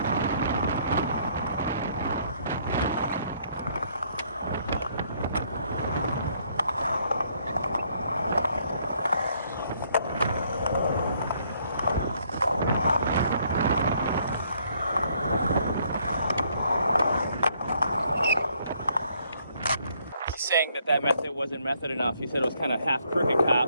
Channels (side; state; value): both; inverted; correlation -0.68